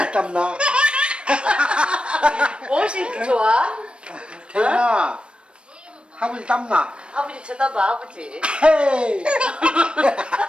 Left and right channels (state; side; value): late; left; 0.057 ms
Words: 땀나. 무엇이 이렇게 좋아? 태연아, 아버지 땀나. 아버지 쳐다봐 아버지. 헤이